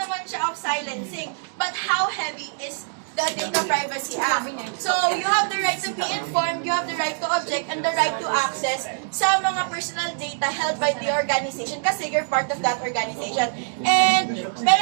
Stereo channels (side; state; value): left; silent; digital silence